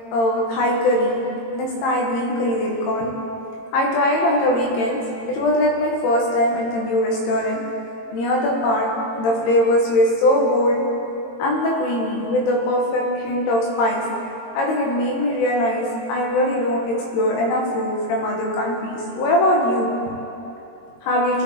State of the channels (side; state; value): right; late; 22 ms